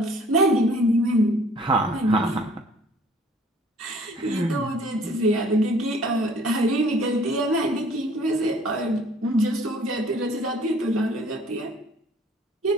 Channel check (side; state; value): both; normal; correlation 0.55